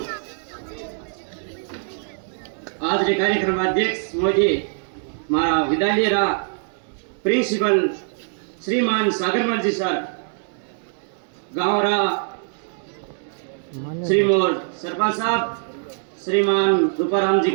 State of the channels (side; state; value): left; silent; 60 dB below the other